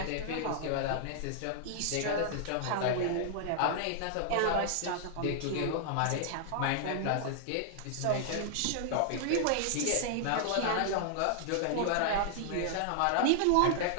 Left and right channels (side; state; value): both; different; correlation 0.00